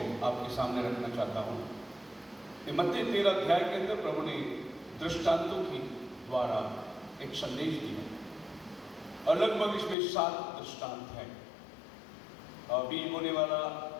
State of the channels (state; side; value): drops out; right; at 10.0 s